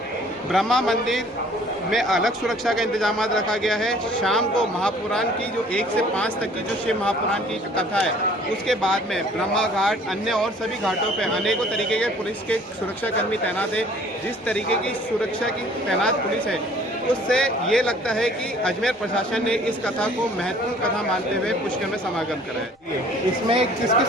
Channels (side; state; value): both; normal; correlation 0.54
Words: ब्रह्मा मंदिर में अलग सुरक्षा का इंतजाम रखा गया है। शाम को महापुराण की जो 1 से 5 तक की जो शिव महापुराण की कथा है, उसके बाद में ब्रह्मा घाट अन्य और सभी घाटों पे अनेकों तरीके के पुलिस के सुरक्षाकर्मी तैनात है। जिस तरीके की सुरक्षा की तैनात पुलिस है, उससे ये लगता है कि अजमेर प्रशासन ने इस कथा को महत्वपूर्ण कथा मानते हुए पुष्कर में समागम करा है। इसमें किस किस